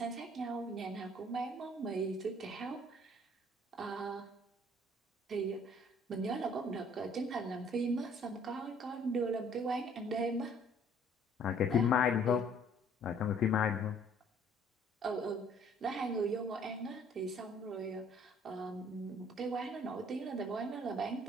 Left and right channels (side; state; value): both; normal; correlation 0.58